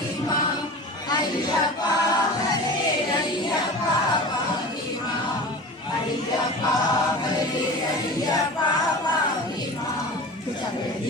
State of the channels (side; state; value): both; normal; correlation 0.34